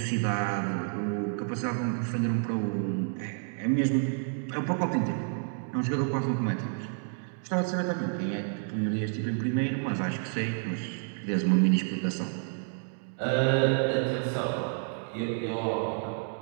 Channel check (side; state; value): left; silent; 58 dB below the other